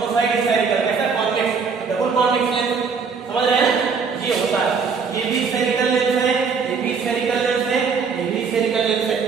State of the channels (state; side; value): quieter; left; 5.5 dB